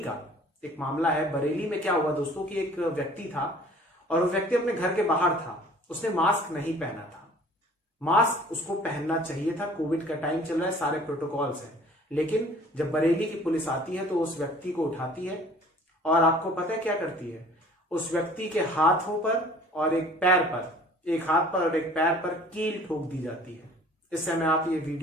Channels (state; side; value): normal; both; correlation 0.50